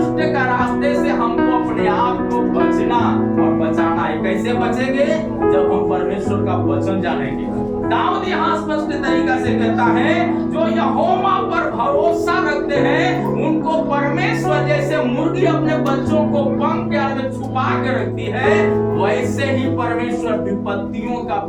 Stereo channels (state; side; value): identical; both; correlation 1.00